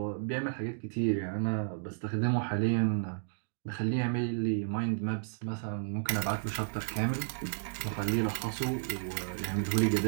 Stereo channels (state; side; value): silent; left; digital silence